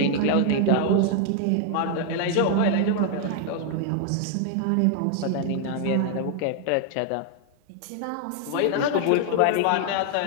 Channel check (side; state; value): both; different; correlation 0.00